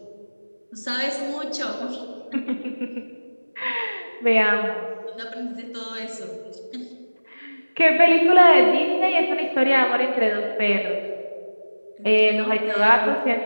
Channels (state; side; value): inverted; both; correlation -1.00